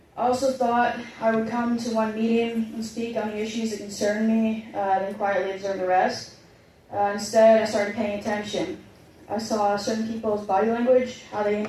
I also thought I would come to one meeting and speak on the issues that concern me, then quietly observe the rest. Instead, I started paying attention. I saw certain people's body language, how they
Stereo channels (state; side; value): identical; both; correlation 1.00